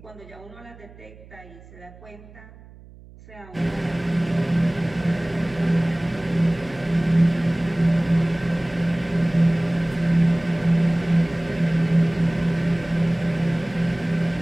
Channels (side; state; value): right; noise; hum, 21 dB below the sound